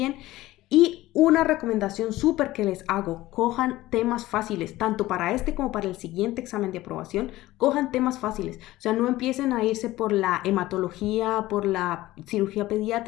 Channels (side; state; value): right; quieter; 16.9 dB